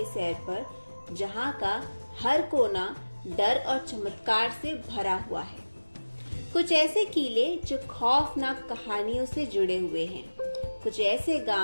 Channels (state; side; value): inverted; both; correlation -1.00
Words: सैर पर, जहां का हर कोना डर और चमत्कार से भरा हुआ है। कुछ ऐसे किले जो खौफनाक कहानियों से जुड़े हुए हैं, कुछ ऐसे